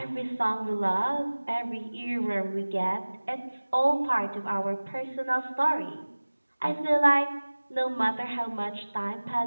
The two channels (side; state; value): both; inverted; correlation -1.00